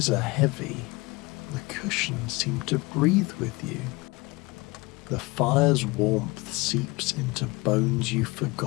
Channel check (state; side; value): quieter; right; 24.0 dB